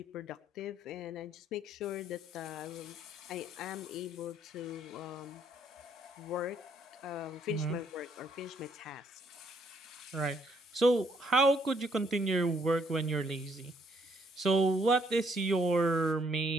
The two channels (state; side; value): normal; both; correlation 0.69